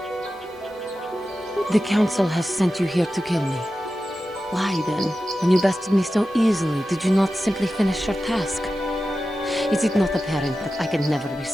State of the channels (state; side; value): normal; both; correlation 0.93